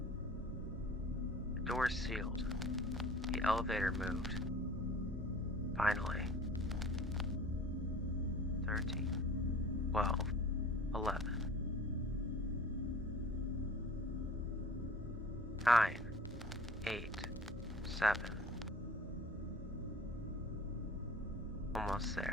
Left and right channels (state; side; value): normal; both; correlation 0.44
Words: The doors sealed. The elevator moved. Finally. 13, 12, 11. 9, 8, 7. Almost